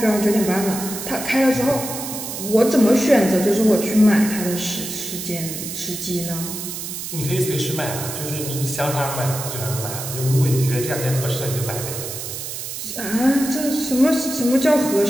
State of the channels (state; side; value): noise; right; hiss, 7 dB below the sound